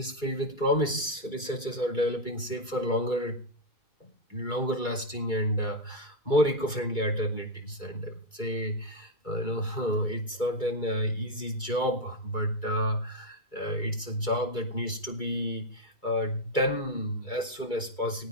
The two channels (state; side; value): late; right; 2.3 ms